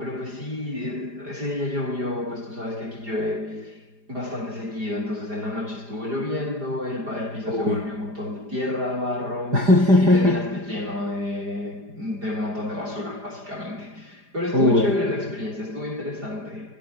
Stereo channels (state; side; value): late; left; 4.9 ms